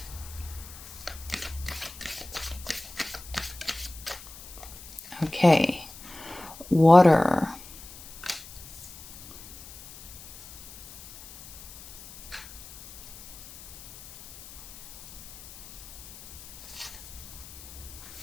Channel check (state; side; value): noise; left; hiss, 16 dB below the sound